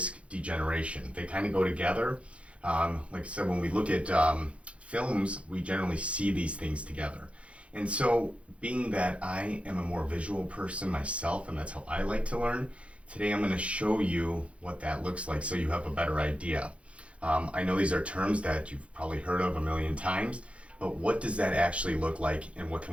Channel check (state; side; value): late; left; 0.061 ms